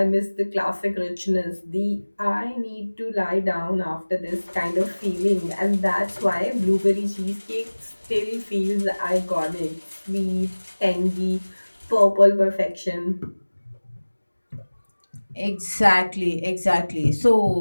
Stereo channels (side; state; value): both; inverted; correlation -1.00